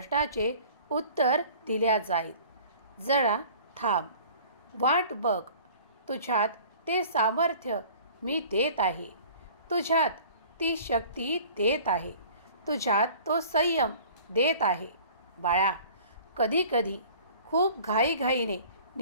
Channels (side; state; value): both; inverted; correlation -0.47